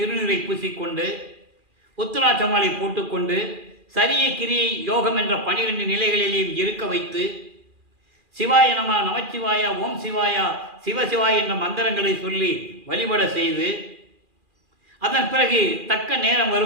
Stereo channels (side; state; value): left; late; 2.4 ms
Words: பூசிக்கொண்டு உத்திராட்சமாலை போட்டுக்கொண்டு சரியை கிரியை யோகம் என்ற 12 நிலைகளிலேயும் இருக்க வைத்து சிவாய நம, நமச்சிவாய, ஓம் சிவாயா, சிவசிவாய் என்ற மந்திரங்களை சொல்லி வழிபட செய்து அதன் பிறகு தக்க நேரம்